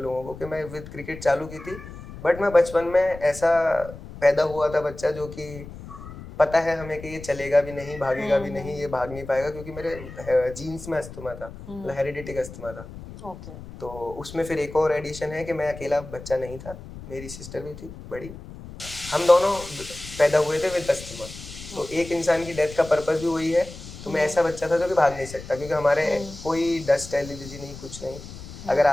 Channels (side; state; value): left; noise; rumble, 14 dB below the sound